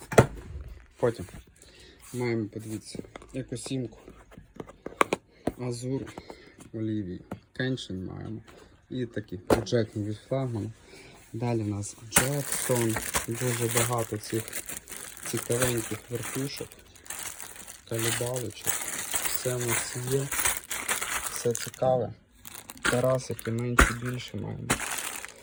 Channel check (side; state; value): both; identical; correlation 1.00